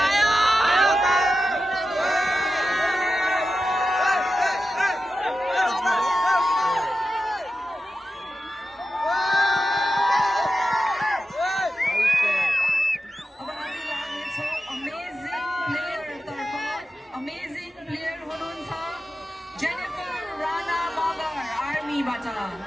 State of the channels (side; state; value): both; normal; correlation 0.91